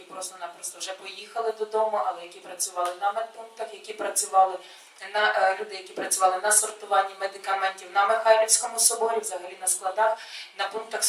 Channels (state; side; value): identical; both; correlation 1.00